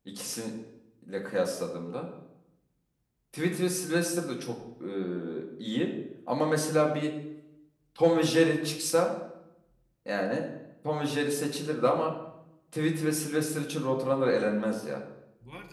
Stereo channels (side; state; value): both; identical; correlation 1.00